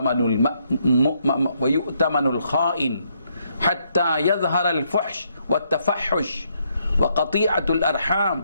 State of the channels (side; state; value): both; inverted; correlation -0.74